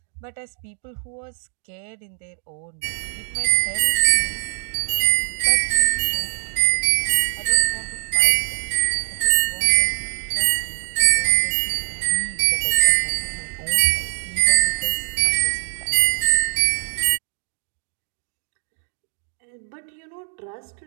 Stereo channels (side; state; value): left; silent; digital silence